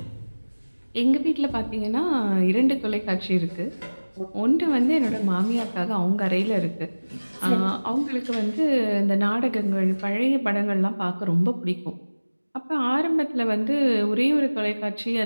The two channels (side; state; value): both; inverted; correlation -1.00